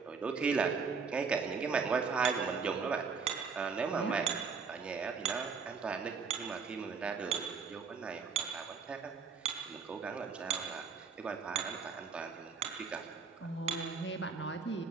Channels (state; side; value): quieter; left; 5.5 dB